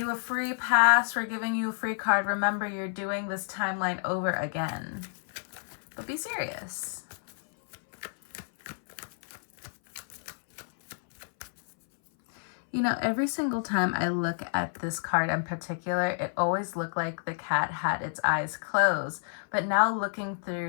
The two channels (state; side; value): silent; right; 58 dB below the other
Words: a free pass. We're giving you a free card. Remember, you're doing this timeline over again. But be serious. You know, every single time I look at this card in particular, it always looked like the cat had its eyes closed. But now looking